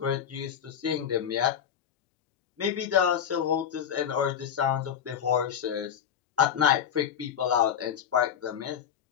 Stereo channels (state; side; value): quieter; right; 8.7 dB